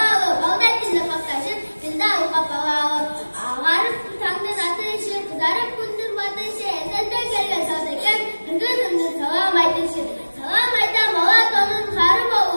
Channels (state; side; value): inverted; both; correlation -1.00